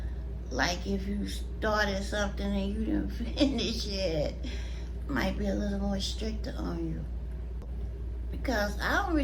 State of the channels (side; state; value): both; identical; correlation 1.00